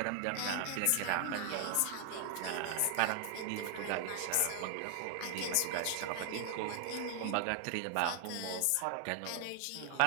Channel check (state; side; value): different; both; correlation 0.00